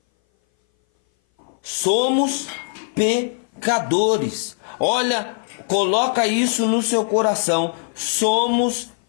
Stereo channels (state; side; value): silent; right; 59 dB below the other